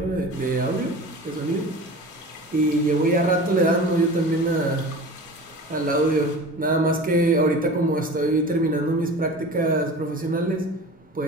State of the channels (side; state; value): both; normal; correlation 0.37